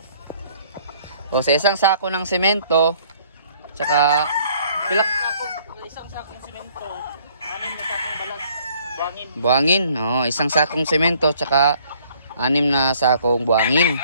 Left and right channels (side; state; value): both; inverted; correlation -0.60